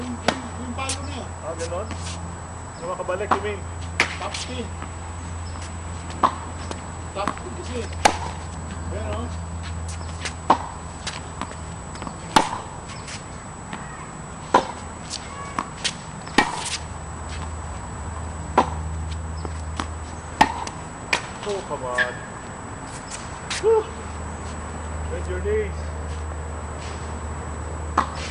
Yung palo na yun. Ah, ganon? Yung makabalik, you mean? Top spin. Top spin kasi. Pero, Oh, come on. Whew. Bend your knees.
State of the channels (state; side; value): identical; both; correlation 1.00